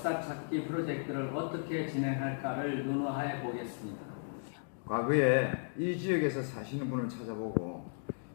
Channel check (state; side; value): silent; right; digital silence